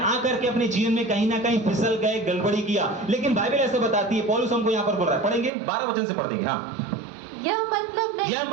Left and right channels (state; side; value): drops out; left; at 5.5 s